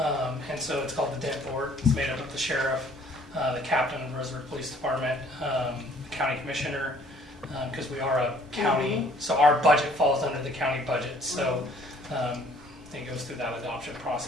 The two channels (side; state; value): both; normal; correlation 0.58